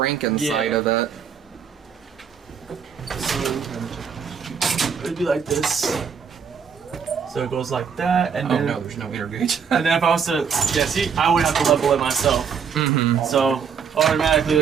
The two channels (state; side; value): quieter; left; 6.8 dB